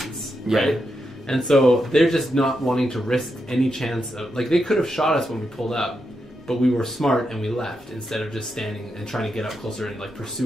Yeah. right? And so they're just not wanting to risk any chance of they could have shot us when we pulled up, but we were smart and we left instead of just standing and trying to get up closer and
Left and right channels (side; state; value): both; normal; correlation 0.85